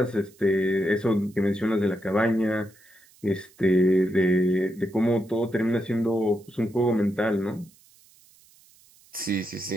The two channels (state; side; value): noise; right; hiss, 28 dB below the sound